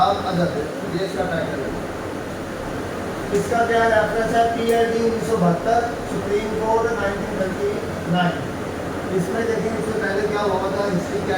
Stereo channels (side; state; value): both; identical; correlation 1.00